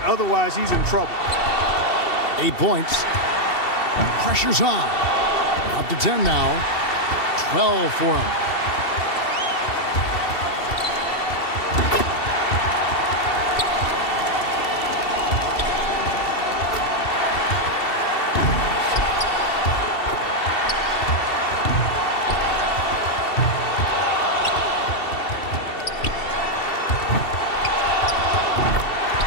Otherwise, he's in trouble. 8 points. Pressure's on. Up to 10 now. 12 for him.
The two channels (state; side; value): late; right; 2.7 ms